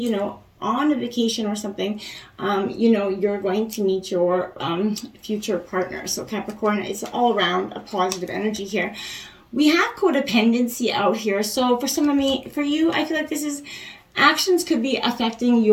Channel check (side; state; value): both; identical; correlation 1.00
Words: know, on a vacation or something, you know, you're going to meet your future partner. So Capricorn, it's all around a positive energy here. We have codependency out here. So for for you, I feel like this is actions could be affecting